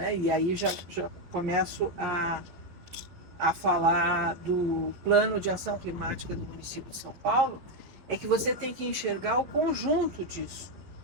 e aí já começo a falar do plano de ação climática do município de São Paulo, é que você tem que enxergar o conjunto disso,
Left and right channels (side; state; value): left; late; 12 ms